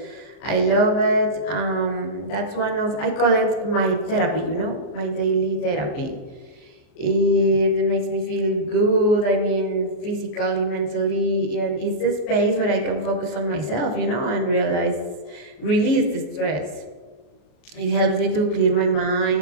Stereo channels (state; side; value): late; right; 38 ms